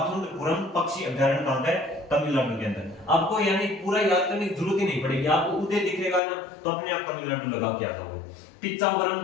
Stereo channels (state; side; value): drops out; right; at 6.2 s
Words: पक्षी अभयारण्य कहां है? तमिलनाडु के अंदर। आपको यानी पूरा याद करने की जरूरत ही नहीं पड़ेगी, आपको उदय दिखेगा ना तो अपने आप तमिलनाडु लगा के आता हूं।